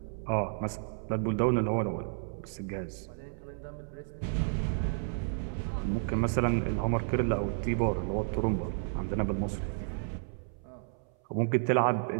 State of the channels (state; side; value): silent; left; 57 dB below the other